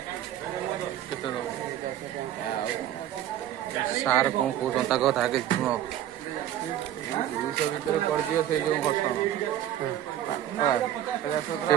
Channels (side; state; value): left; quieter; 11.8 dB